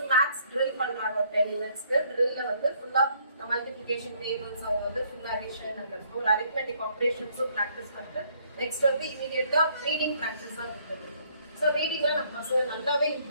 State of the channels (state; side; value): inverted; both; correlation -0.65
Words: மேத்ஸ் ட்ரில் பண்றாங்க ஒரு 10 minutesக்கு. ட்ரில்ல வந்து ஃபுல்லா மல்டிபிகேஷன் டேபிள்ஸ் அவங்க வந்து ஃபுல்லா அடிஷன் அண்ட் ஒரு அரித்மெட்டிக் ஆப்ரேஷன்ஸும் ப்ராக்டிஸ் பண்ணிட்டு நெக்ஸ்ட் வந்து இமீடியட்டா ரீடிங் ப்ராக்டிஸ் தான் கொடுத்துருக்கோம். ஸோ ரீடிங்ல நம்ம பசங்க நல்லாவே